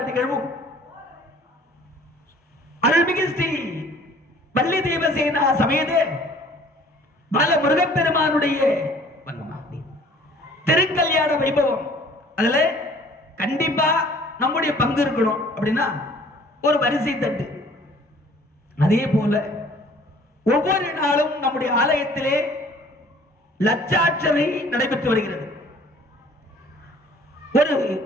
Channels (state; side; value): normal; both; correlation 0.53